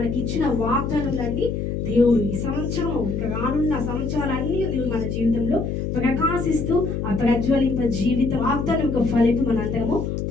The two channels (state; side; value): noise; left; hum, 2 dB below the sound